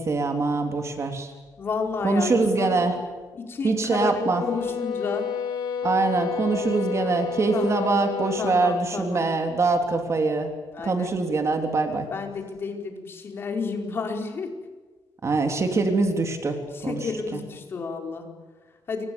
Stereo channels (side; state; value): both; normal; correlation 0.72